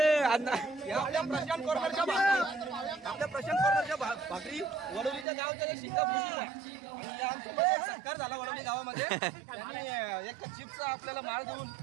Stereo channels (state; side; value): drops out; left; at 5.2 s